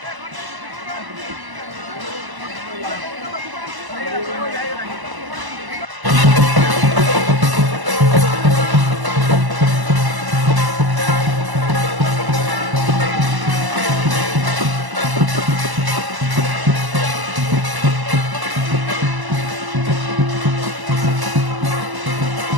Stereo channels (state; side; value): late; left; 1.0 ms